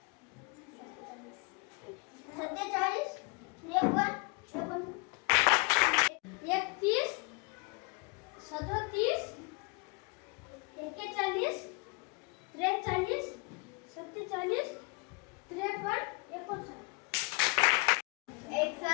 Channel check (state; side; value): quieter; right; 31.0 dB